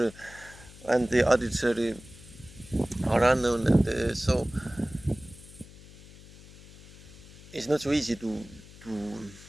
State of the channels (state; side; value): noise; left; hum, 19 dB below the sound